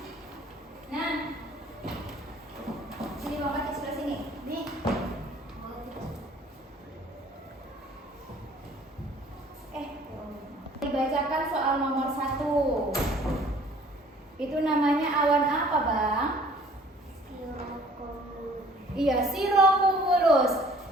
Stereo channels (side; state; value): both; normal; correlation 0.54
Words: Nah, sini Bang Pati sebelah sini. Nih. Dibacakan soal nomor 1. Itu namanya awan apa, Bang? Iya, cirrocumulus.